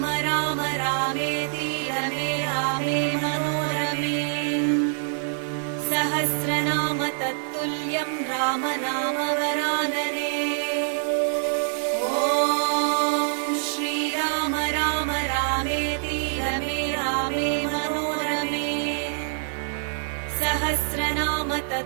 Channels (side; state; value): left; silent; 62 dB below the other